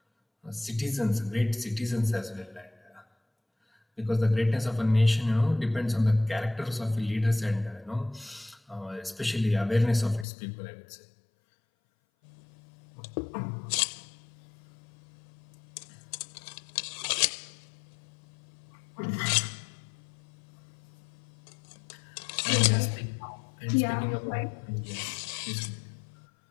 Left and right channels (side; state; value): right; drops out; at 10.2 s